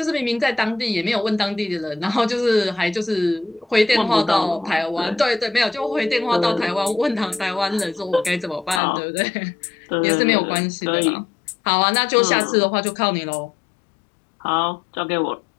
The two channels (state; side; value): drops out; right; at 8.8 s